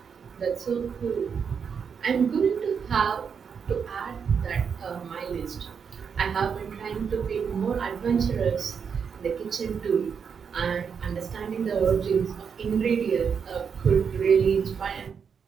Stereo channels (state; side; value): quieter; left; 6.6 dB